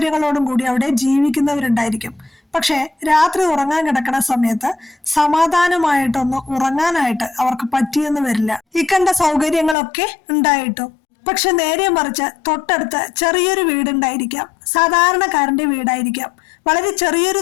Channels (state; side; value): drops out; right; at 9.8 s